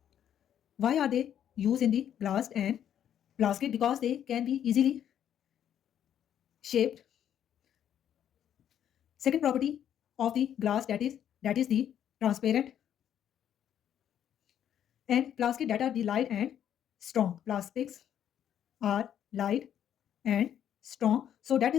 Why are they used in the glass and plastic? Because they can be easily shaped. Second property of the glass, that is the transparent, and plastic, that are the light and strong. Plastics are light and strong, so that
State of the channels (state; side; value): quieter; right; 9.9 dB